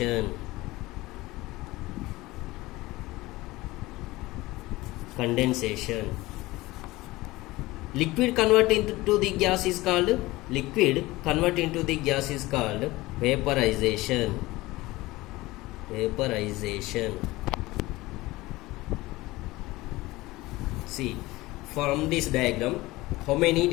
Liquid convert into the gas is called vaporization. Vaporization. See, from this diagram, how many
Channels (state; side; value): quieter; right; 19.7 dB